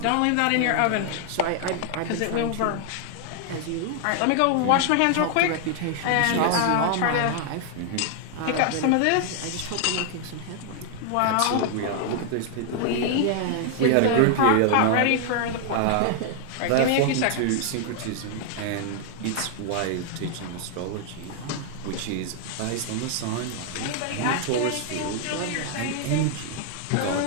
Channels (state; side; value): different; both; correlation 0.00